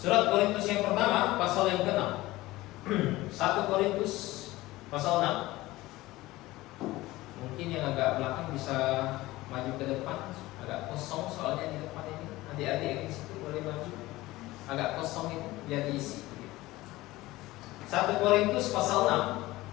Korintus yang pertama pasal yang ke-6. 1 Korintus pasal 6. Mungkin yang agak belakang bisa maju ke depan. Agak kosong soalnya di depan ini. Adik-adik yang di situ boleh maju. Agak kosong itu biar diisi. 1 Korintus pasal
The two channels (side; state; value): right; quieter; 18.5 dB